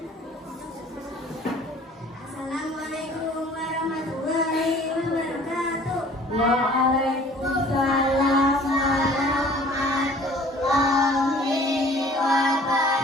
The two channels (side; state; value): both; normal; correlation 0.51